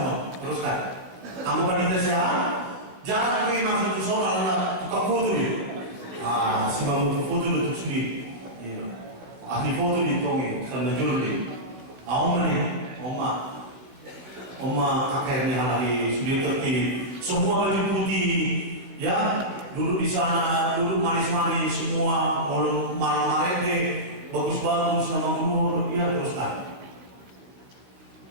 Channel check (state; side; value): late; left; 16 ms